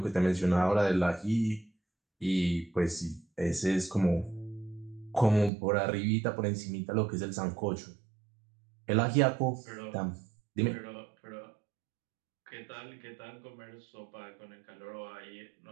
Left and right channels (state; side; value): drops out; left; at 5.5 s